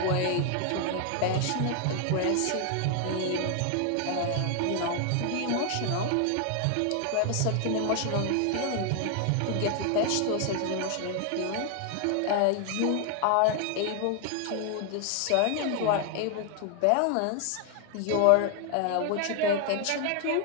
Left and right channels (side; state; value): both; different; correlation 0.00